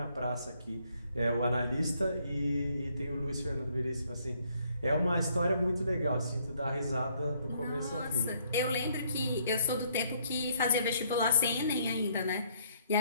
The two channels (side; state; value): both; inverted; correlation -0.67